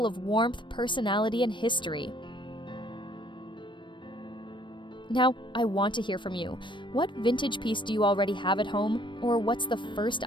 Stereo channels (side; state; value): right; late; 0.23 ms